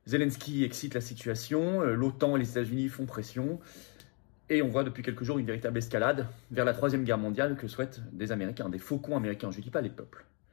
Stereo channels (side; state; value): right; quieter; 36.0 dB